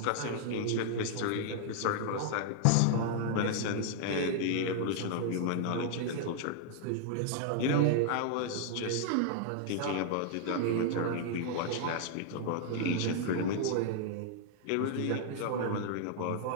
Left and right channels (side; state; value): both; different; correlation -0.01